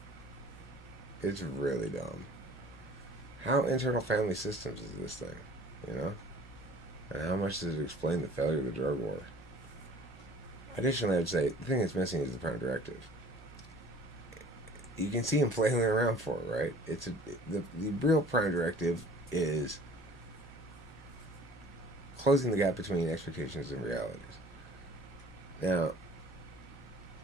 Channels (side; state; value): both; normal; correlation 0.49